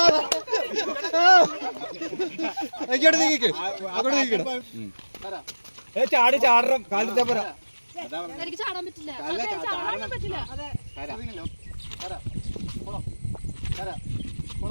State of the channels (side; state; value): both; inverted; correlation -1.00